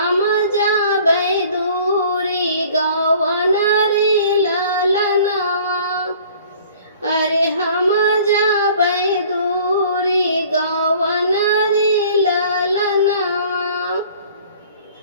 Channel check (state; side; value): inverted; both; correlation -0.51